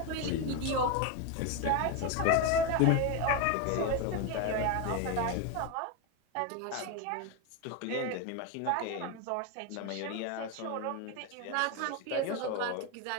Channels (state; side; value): different; both; correlation 0.03